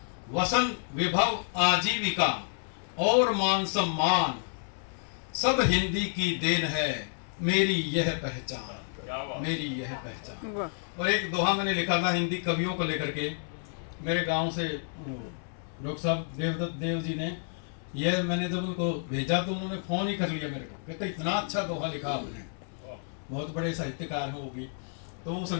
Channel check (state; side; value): silent; right; 58 dB below the other